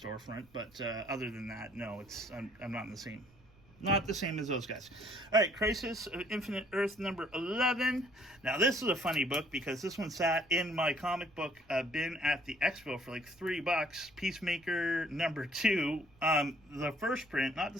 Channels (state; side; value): noise; right; rumble, 28 dB below the sound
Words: but other than that, no, I'm not not the same as those guys. All right, Crisis of Infinite Earth number 11. Now this is a funny book because this one sat in my comic book bin at the expo for like $3. Peacemaker number 2, the first print, not the